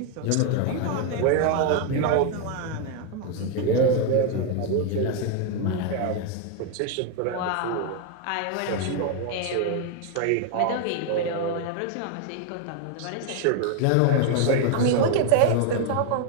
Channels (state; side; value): different; both; correlation 0.01